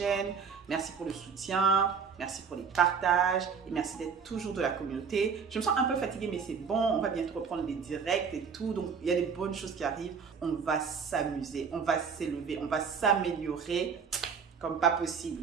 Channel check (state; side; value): quieter; left; 6.1 dB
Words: Merci pour le soutien, merci pour les partages et merci d'être toujours de la communauté. Je me sens un peu fatiguée mais c'est bon, on va bientôt reprendre les directs et tout. Donc il y a des bonnes choses qui arrivent. On va s'amuser, on va s'élever, on va s'améliorer comme pas possible.